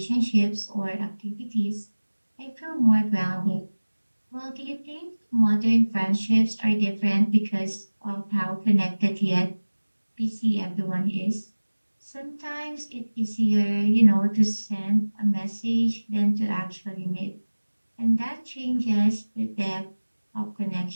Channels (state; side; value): inverted; both; correlation -1.00